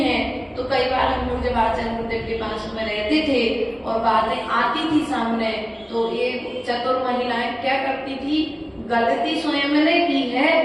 तो कई बार हम लोग जब आचार्य गुरुदेव के पास में रहते थे और बातें आती थी सामने, तो ये चतुर महिलाएं क्या करती थी, गलती स्वयं ने की है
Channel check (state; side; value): identical; both; correlation 1.00